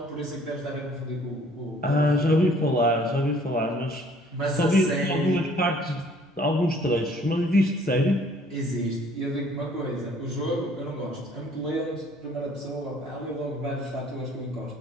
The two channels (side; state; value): both; normal; correlation 0.58